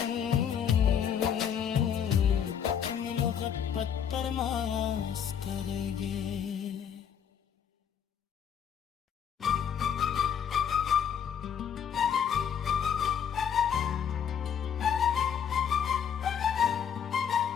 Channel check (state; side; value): quieter; right; 8.2 dB